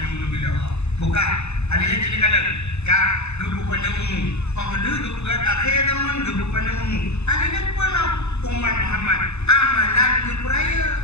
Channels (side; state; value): right; late; 0.81 ms